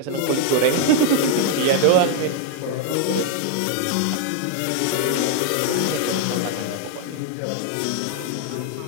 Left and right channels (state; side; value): different; both; correlation 0.00